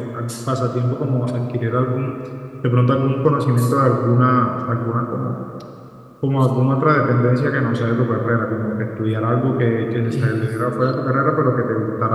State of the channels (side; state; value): both; identical; correlation 1.00